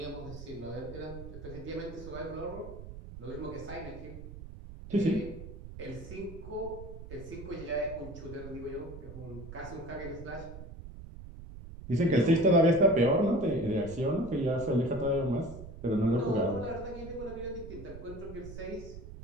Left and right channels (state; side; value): noise; right; rumble, 12 dB below the sound